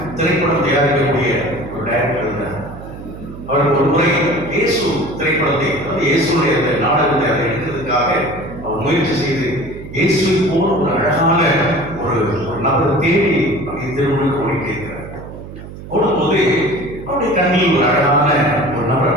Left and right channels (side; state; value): right; noise; hum, 13 dB below the sound